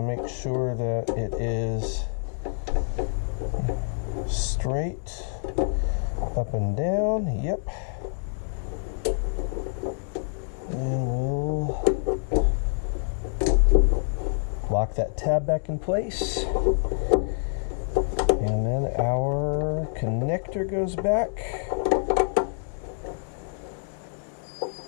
make sure that it is straight up and down. Yep. And we'll lock that tab back in place. And then our connector goes back.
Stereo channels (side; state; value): right; silent; digital silence